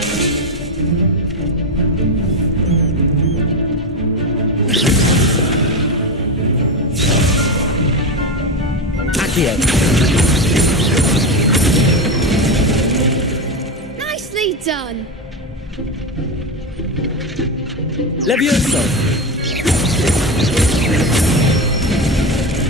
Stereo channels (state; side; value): normal; both; correlation 0.15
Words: Accio! Nicely done! Levioso!